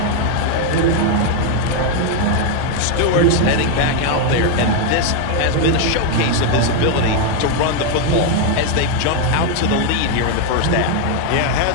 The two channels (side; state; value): both; different; correlation 0.01